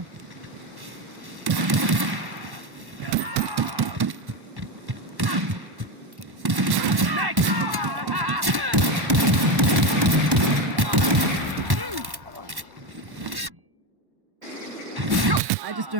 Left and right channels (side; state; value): left; late; 1.1 ms